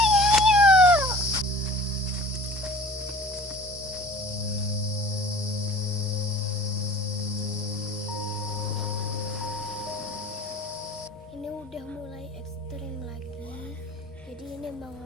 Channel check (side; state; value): both; normal; correlation 0.45